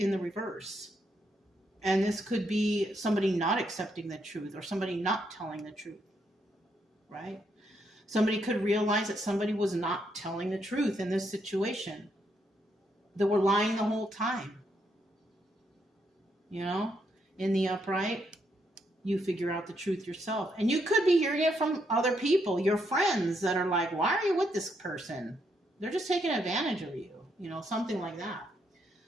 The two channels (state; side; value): normal; both; correlation 0.77